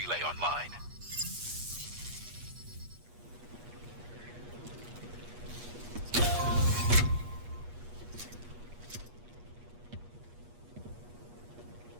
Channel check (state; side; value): late; left; 8.3 ms